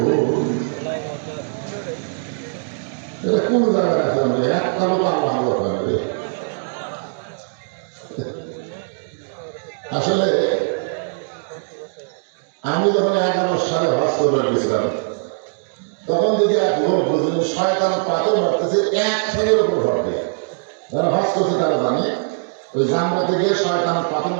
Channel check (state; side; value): silent; left; digital silence